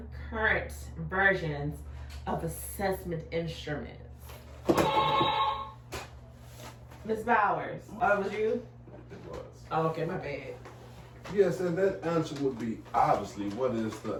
versions of assessment instruments. Ms. Bowers, oh, it was you? It was. Oh, okay, my bad. Yes, and that answer would be obviously what is the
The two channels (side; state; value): both; identical; correlation 1.00